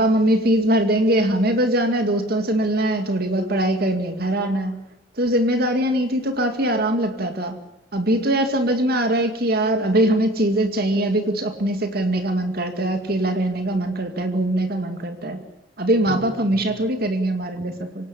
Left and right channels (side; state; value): both; normal; correlation 0.46